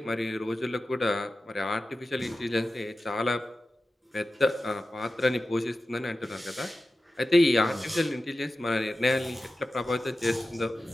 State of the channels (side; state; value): both; normal; correlation 0.94